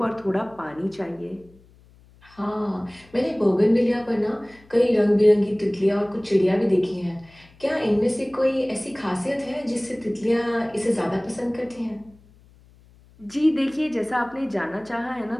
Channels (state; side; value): noise; left; hum, 27 dB below the sound